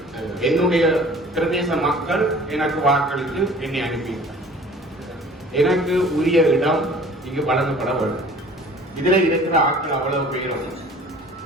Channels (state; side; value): normal; both; correlation 0.48